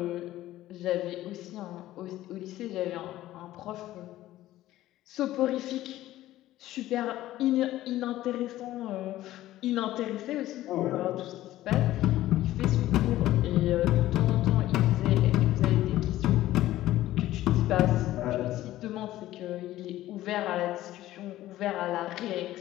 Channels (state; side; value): quieter; right; 14.9 dB